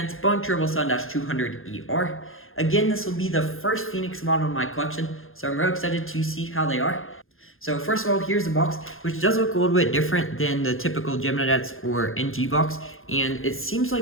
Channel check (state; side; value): late; right; 0.60 ms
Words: Boeing 777-200ER. Again, this will be the first Phoenix model in my collection, so I'm really excited to see how they are. So first of all, here's the box, which does look a little bit different than the typical Gemini-Jets or NG box, and it seems